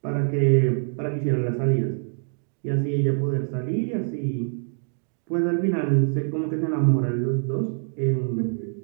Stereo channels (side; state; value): left; silent; digital silence